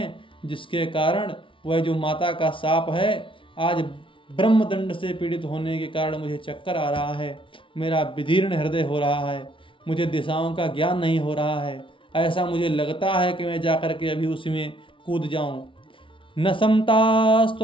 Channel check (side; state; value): right; late; 0.25 ms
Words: जिसके कारण वह जो माता का शाप है, आज ब्रह्मदंड से पीड़ित होने के कारण मुझे चक्कर आ रहा है, मेरा विदीर्ण हृदय हो रहा है, मुझे दिशाओं का ज्ञान नहीं हो रहा है। ऐसा मुझे लगता है कि मैं जाकर के अभी उसी में कूद जाऊं। न